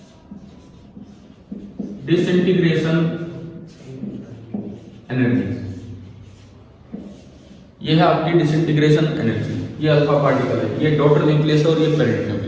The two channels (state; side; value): identical; both; correlation 1.00